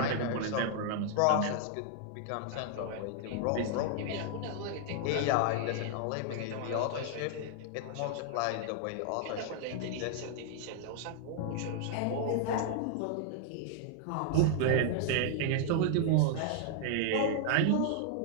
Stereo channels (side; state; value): both; different; correlation 0.00